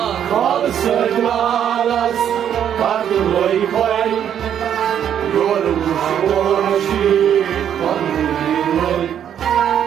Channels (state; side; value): quieter; left; 9.4 dB